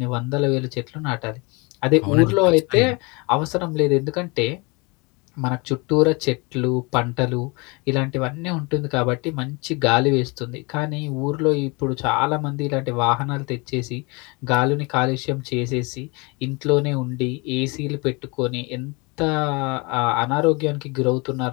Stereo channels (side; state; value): right; quieter; 28.2 dB